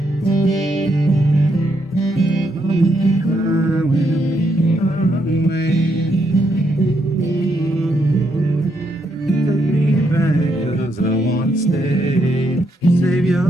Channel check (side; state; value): both; normal; correlation 0.77